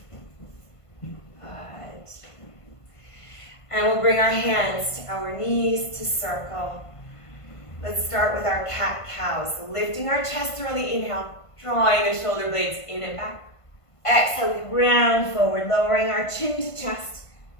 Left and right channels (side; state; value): right; late; 1.5 ms